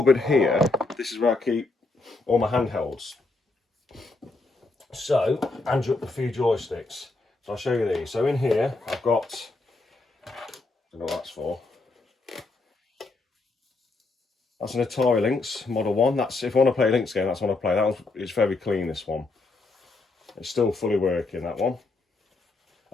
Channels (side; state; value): right; quieter; 3.4 dB